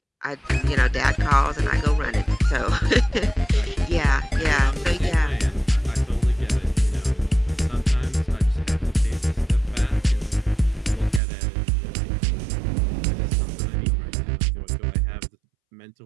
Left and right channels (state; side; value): drops out; left; at 11.2 s